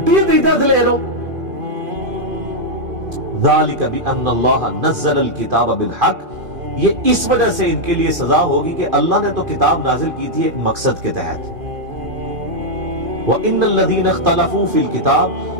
دیتا لے لو۔ ذالک بان اللہ نزل الکتاب بالحق، یہ اس وجہ سے ان کے لیے سزا ہوگی کہ اللہ نے تو کتاب نازل کی تھی ایک مقصد کے تحت۔ وَإِنَّ الَّذِينَ اخْتَلَفُوا فِي الْكِتَابِ،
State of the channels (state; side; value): late; left; 2.5 ms